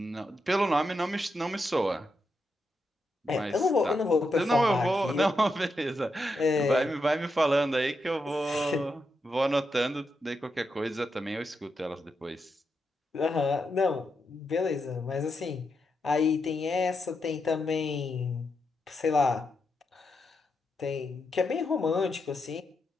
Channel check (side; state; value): both; normal; correlation 0.84